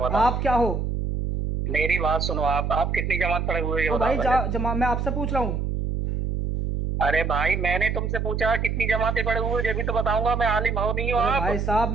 आप क्या हो? मेरी बात सुनो, आप कितनी जमात पढ़े हुए हैं ये तो बताओ भाई पहले। मैं आपसे पूछ रहा हूँ। अरे भाई मैंने तुमसे पूछा कितनी जमातें पढ़े हुए, ये भी तो बताऊंगा। मैं आलिम हो नहीं हो अरे आप? भाई साहब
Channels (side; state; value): right; noise; hum, 1 dB below the sound